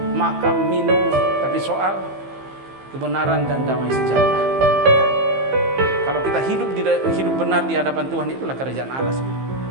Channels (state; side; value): late; left; 15 ms